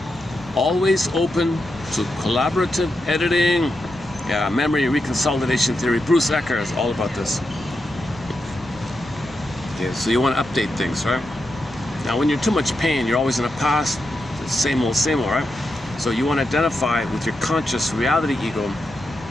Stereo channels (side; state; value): left; noise; rumble, 21 dB below the sound